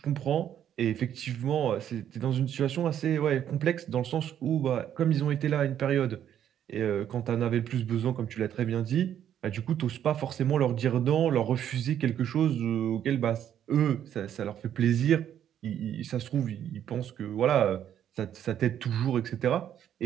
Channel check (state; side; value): quieter; left; 10.1 dB